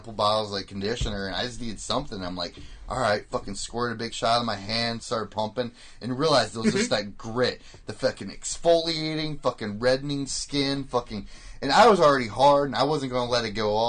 bottles, like, conditioner, and I just needed something. I'm like, all right, fucking squirted a big shot in my hand, started pumping, and realized it was just that grit. The fucking exfoliating, fucking reddening skin, fucking... And I was already hard, and I wasn't going to let it go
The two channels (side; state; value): both; identical; correlation 1.00